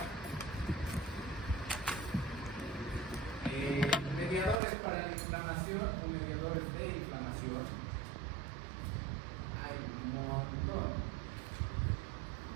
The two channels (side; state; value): left; drops out; at 4.6 s